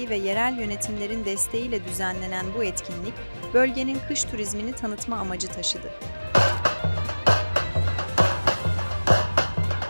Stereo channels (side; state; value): both; inverted; correlation -1.00